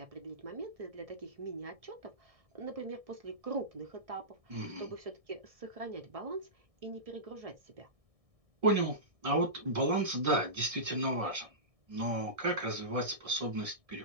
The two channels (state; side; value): late; left; 1.6 ms